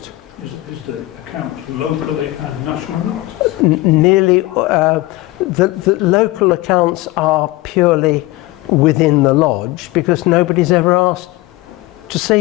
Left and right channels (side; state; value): right; quieter; 19.2 dB